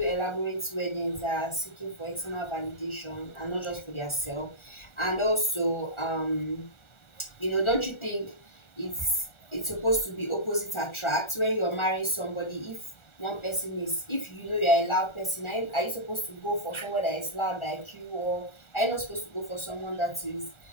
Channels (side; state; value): right; late; 1.4 ms